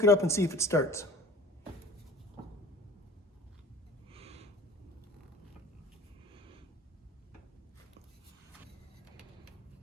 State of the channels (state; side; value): normal; both; correlation 0.43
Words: it up and see if it starts.